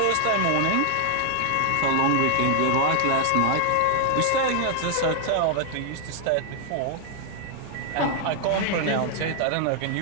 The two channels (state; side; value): different; both; correlation 0.00